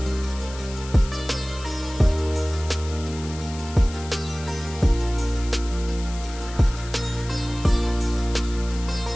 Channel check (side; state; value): left; noise; hiss, 15 dB below the sound